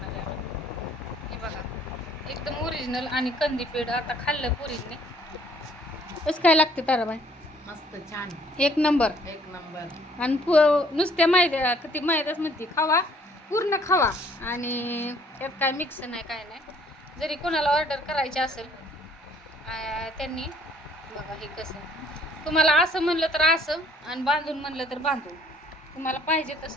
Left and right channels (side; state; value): both; normal; correlation 0.60